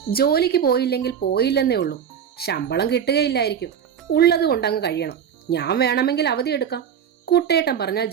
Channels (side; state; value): left; quieter; 8.3 dB